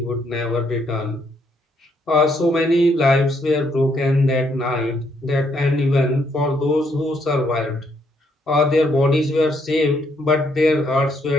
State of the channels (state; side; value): normal; both; correlation 0.72